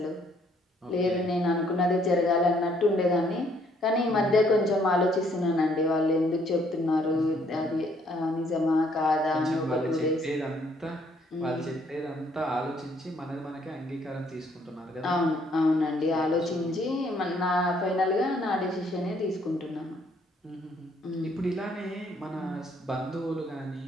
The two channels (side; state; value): both; normal; correlation 0.66